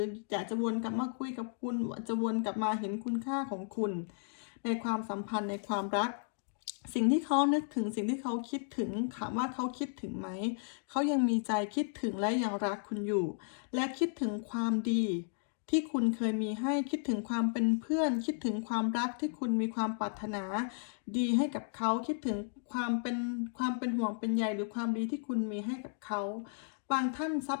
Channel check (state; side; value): silent; right; digital silence